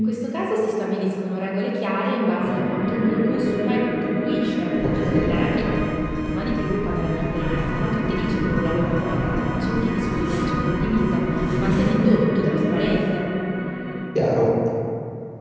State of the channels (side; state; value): both; identical; correlation 1.00